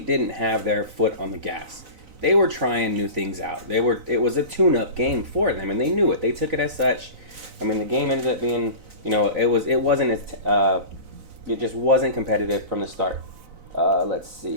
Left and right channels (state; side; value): late; left; 4.0 ms